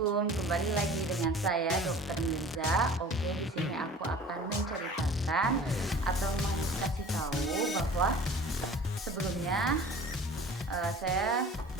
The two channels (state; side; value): normal; both; correlation 0.43